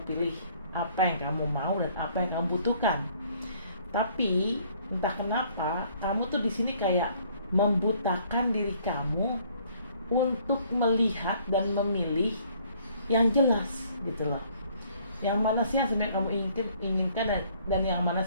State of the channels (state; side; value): inverted; both; correlation -0.61